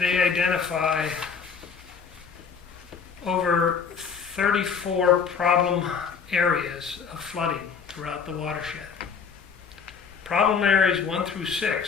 identify over 34 problem areas of flooding throughout the watershed. Problem areas 1 through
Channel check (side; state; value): right; quieter; 6.2 dB